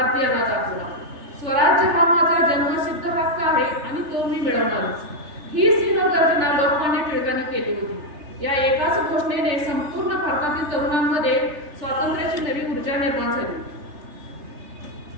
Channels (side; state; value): left; late; 3.3 ms